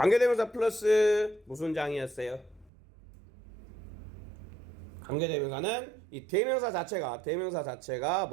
플러스 무슨 장이었어요? 관계대명사는 이 대명사 자체가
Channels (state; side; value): drops out; left; at 2.7 s